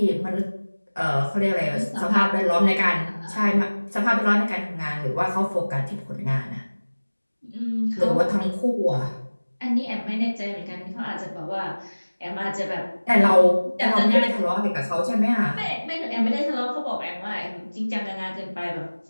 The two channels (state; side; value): inverted; both; correlation -1.00